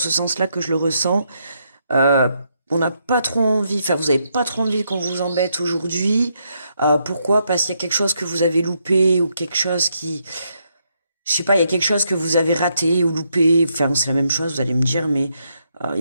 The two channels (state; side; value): inverted; both; correlation -0.78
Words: sens-là que je le ressens. On n'a pas trop envie, enfin vous avez pas trop envie qu'on vous embête aujourd'hui. Pourquoi? Parce qu'il y a quelque chose que vous avez loupé, ou quelque chose qui... Je sais pas, il y a quelque chose que vous avez raté ou loupé, enfin c'est la même chose, vous allez me dire, mais